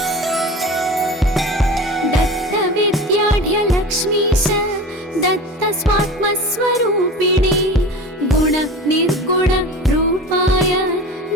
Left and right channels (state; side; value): normal; both; correlation 0.33